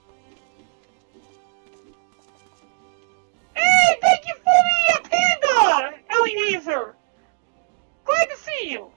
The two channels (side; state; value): left; silent; 64 dB below the other